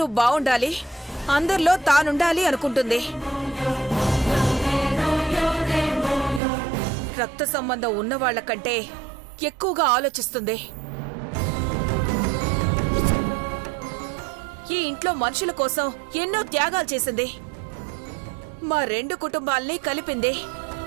బావుండాలి, అందరిలో తానుండాలి అనుకుంటుంది. రక్త సంబంధం ఉన్నవాళ్ల కంటే ఎక్కువగా ఆలోచిస్తుంది. ఈ ఇంట్లో మనుషుల కోసం ఎన్నో త్యాగాలు చేసింది. మా 2 కుటుంబాల్ని కలిపింది.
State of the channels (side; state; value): left; drops out; at 6.4 s